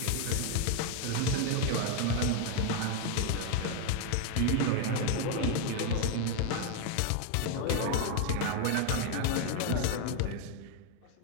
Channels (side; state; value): both; different; correlation 0.01